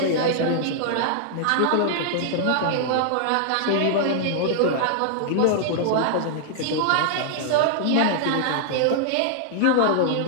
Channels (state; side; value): different; both; correlation -0.01